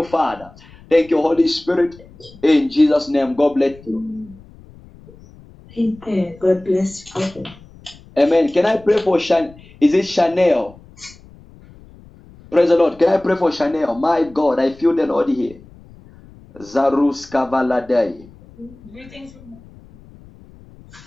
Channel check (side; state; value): left; noise; rumble, 23 dB below the sound